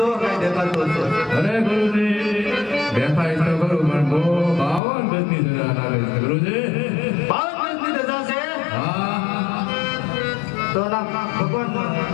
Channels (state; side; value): drops out; right; at 4.8 s